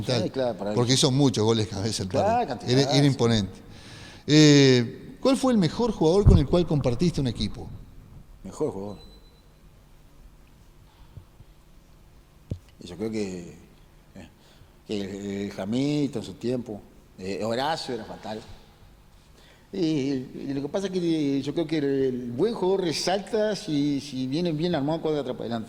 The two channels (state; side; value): identical; both; correlation 1.00